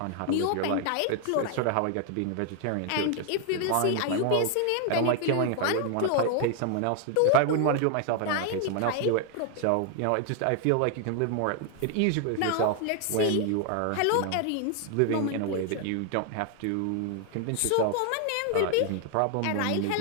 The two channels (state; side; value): different; both; correlation 0.00